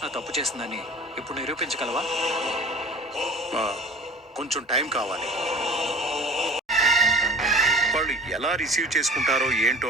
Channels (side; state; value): both; normal; correlation 0.43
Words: తప్పు చేసిందని ఇప్పుడు నిరూపించగలవా? కొంచెం టైం కావాలి. వాళ్ళు ఎలా రిసీవ్ చేసుకుంటారో